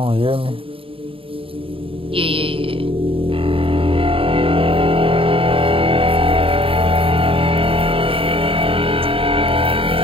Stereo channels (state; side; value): late; left; 0.27 ms